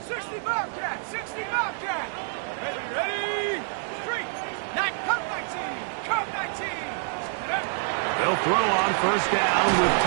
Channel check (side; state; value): left; silent; digital silence